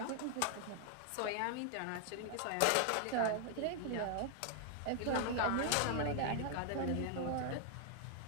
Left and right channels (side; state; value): both; different; correlation 0.00